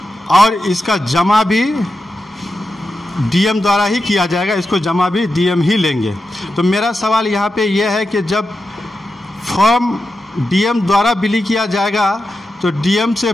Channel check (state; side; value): normal; both; correlation 0.89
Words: और इसका जमा भी डीएम द्वारा ही किया जाएगा, इसको जमा भी डीएम ही लेंगे। तो मेरा सवाल यहाँ पे यह है कि जब फॉर्म डीएम द्वारा बिली किया जाएगा तो डीएम से